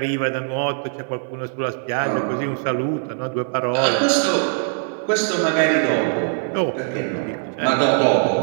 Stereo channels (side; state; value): left; silent; 65 dB below the other